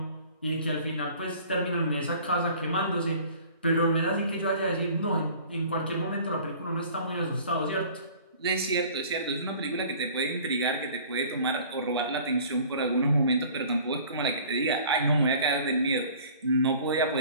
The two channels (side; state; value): both; inverted; correlation -0.49